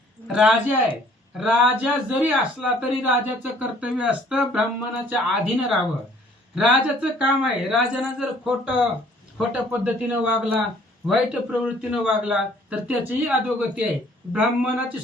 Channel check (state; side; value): normal; both; correlation 0.58